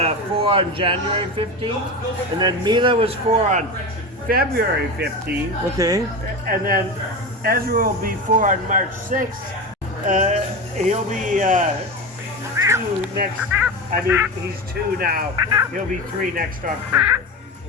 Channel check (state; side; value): normal; both; correlation 0.24